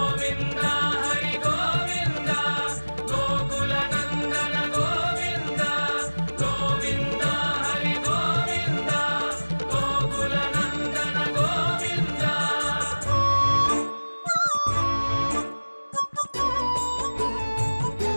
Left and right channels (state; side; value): inverted; both; correlation -1.00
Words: హరి గోవింద గోకుల నందన గోవింద గోవింద హరి గోవింద గోకుల నందన గోవింద